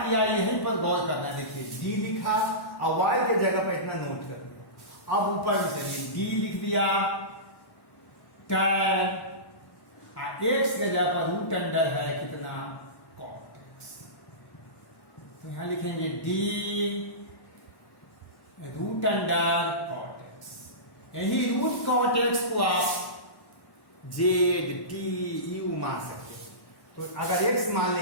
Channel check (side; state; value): right; late; 1.1 ms